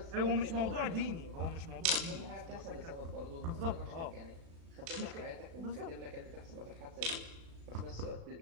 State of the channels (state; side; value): late; left; 36 ms